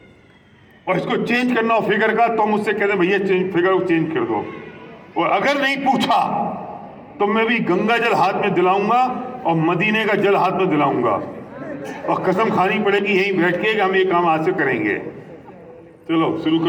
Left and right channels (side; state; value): both; identical; correlation 1.00